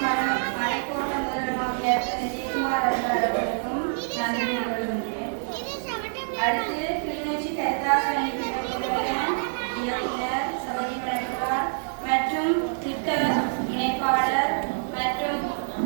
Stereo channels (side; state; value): left; silent; digital silence